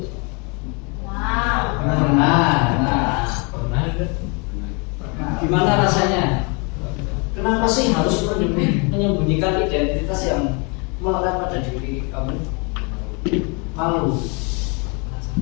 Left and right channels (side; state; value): right; quieter; 32.3 dB